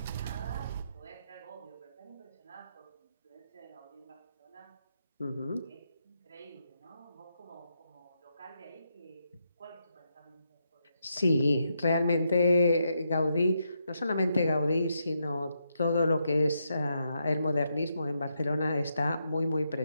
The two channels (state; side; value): inverted; both; correlation -0.81